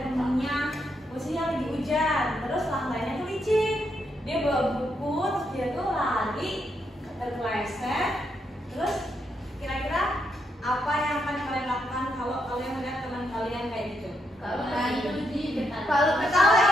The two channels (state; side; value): normal; both; correlation 0.79